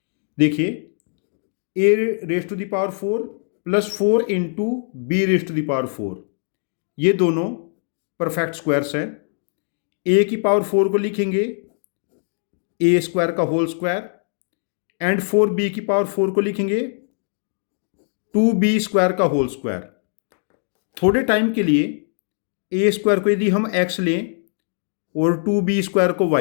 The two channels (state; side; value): silent; right; digital silence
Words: देखिए a raised to the power 4 plus 4 into b raised to the power 4 ये दोनों perfect squares हैं। a की power 4 को लिखेंगे a square का whole square and 4b की power 4 को लिखेंगे 2b स्क्वायर का होल स्क्वायर। थोड़े टाइम के लिए a स्क्वायर को यदि हम x लें और 2b स्क्वायर को